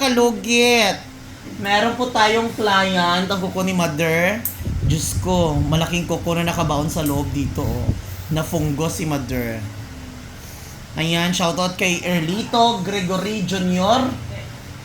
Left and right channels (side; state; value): both; identical; correlation 1.00